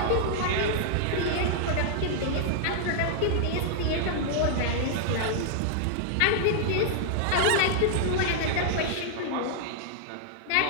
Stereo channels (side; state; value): both; different; correlation -0.01